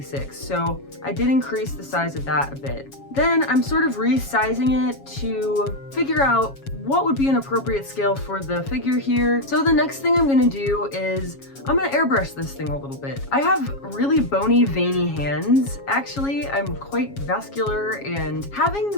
So I did increase the size of that a bit. Then I'm sort of resizing it to figure out what would be an appropriate scale for the figure here. So the next thing I'm gonna do is I'm gonna airbrush this thing a little bit. I have really bony, veiny hands. Actually, I'm quite vascular, and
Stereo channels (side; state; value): right; late; 7.3 ms